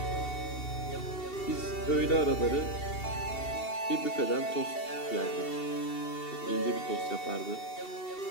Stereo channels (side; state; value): right; late; 2.7 ms